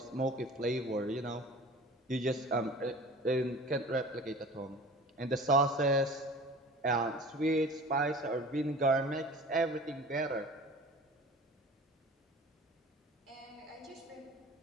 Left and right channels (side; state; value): both; normal; correlation 0.41